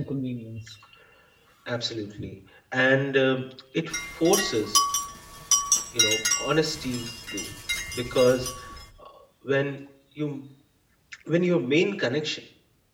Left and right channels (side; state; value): both; identical; correlation 1.00